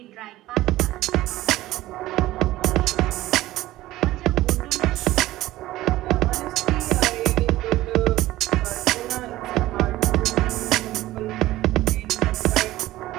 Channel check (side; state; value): left; quieter; 16.4 dB